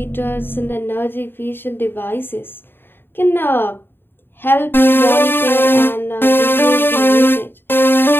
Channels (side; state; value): right; late; 0.10 ms